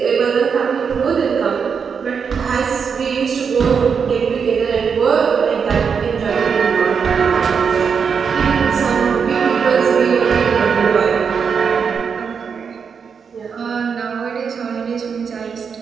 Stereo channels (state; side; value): quieter; left; 6.3 dB